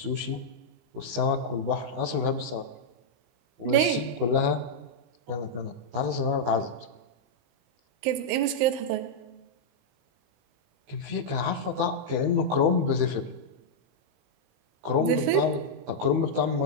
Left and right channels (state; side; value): late; left; 18 ms